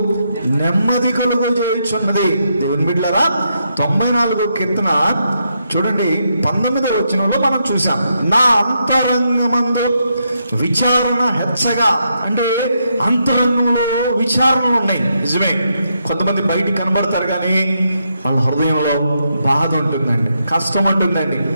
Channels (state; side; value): inverted; both; correlation -0.80